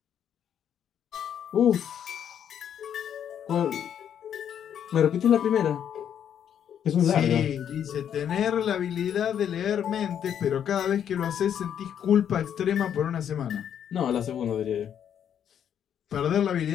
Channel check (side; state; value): right; quieter; 9.1 dB